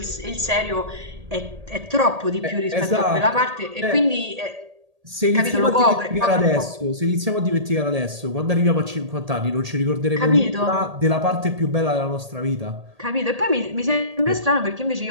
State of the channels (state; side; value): late; left; 1.8 ms